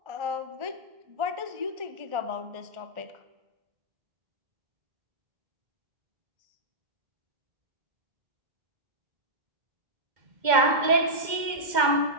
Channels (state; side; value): late; left; 2.1 ms